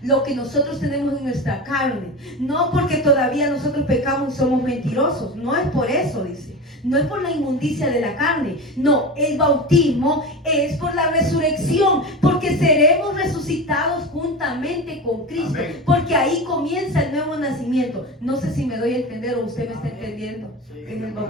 lo que nosotros tenemos en nuestra carne, no porque todavía nosotros pecamos y somos mentirosos, no es por eso, dice, no es por la inmundicia de la carne, no, el bautismo es por la resurrección, porque seremos resucitados juntamente con Cristo. Amén. Porque ahí comienza el nuevo nacimiento. No sé si me doy a entender o usted me está entendiendo. Sí. En el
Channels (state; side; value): normal; both; correlation 0.26